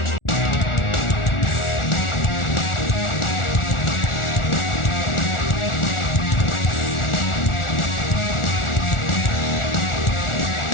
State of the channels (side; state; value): right; late; 1.4 ms